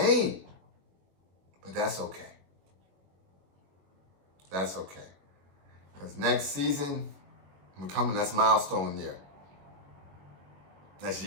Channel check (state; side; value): late; left; 21 ms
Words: But that's okay. Because next season, we're coming, that's milestone year. That's